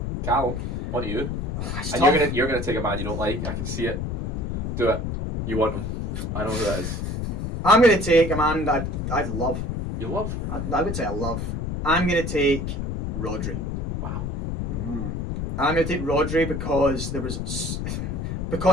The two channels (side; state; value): left; noise; rumble, 3 dB below the sound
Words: Callum, on to you. It's And tough. you're gonna take a man you don't like. I can see it. Do it. You want him. I know who that is. I'm going to take a man that I'd love. You love. I would say I love. I'm going to take Rodri. Wow. I'm going to take Rodri